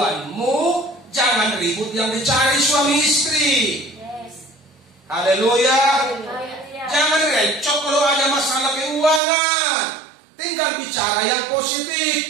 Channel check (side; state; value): left; drops out; at 9.2 s